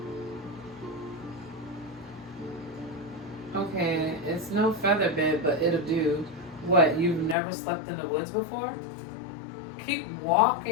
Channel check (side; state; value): right; drops out; at 7.4 s